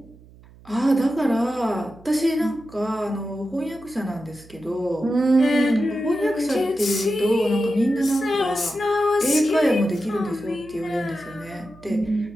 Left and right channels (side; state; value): right; noise; hum, 23 dB below the sound